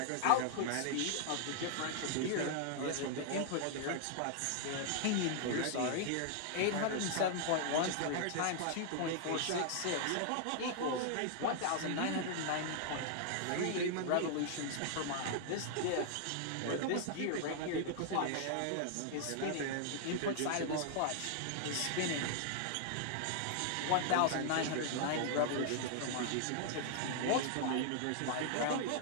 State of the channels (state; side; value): different; both; correlation -0.01